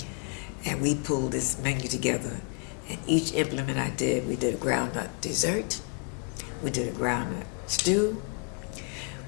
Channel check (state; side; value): quieter; right; 30.7 dB